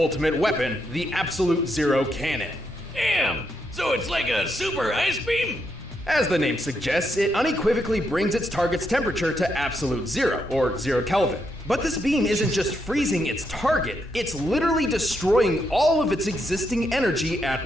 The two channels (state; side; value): normal; both; correlation 0.80